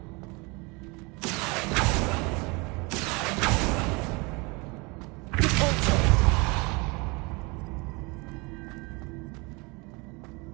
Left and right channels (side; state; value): left; quieter; 27.3 dB